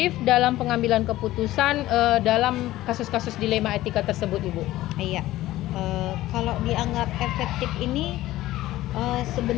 dalam pengambilan keputusan dalam kasus-kasus dilema etika tersebut Ibu? Iya, kalau dianggap efektif ini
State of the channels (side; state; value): right; quieter; 15.9 dB